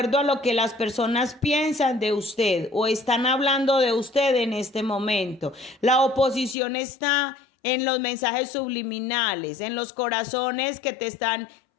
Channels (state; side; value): drops out; right; at 6.6 s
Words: a lo que las personas piensan de usted o están hablando de usted en este momento. La oposición está en los mensajes subliminales, en los corazones que te están